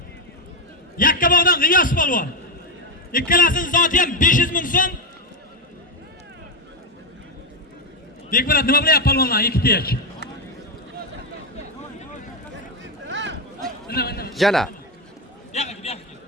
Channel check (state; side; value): normal; both; correlation 0.07